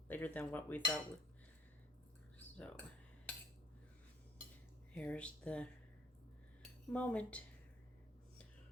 than what we thought would. So here's the moment.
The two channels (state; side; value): normal; both; correlation 0.59